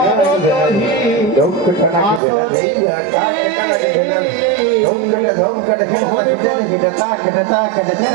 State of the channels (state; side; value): drops out; left; at 2.2 s